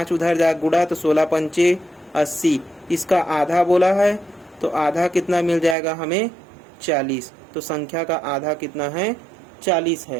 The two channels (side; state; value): left; drops out; at 5.8 s